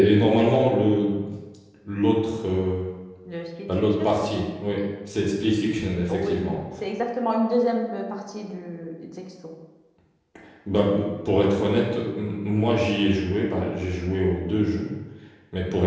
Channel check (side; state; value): both; identical; correlation 1.00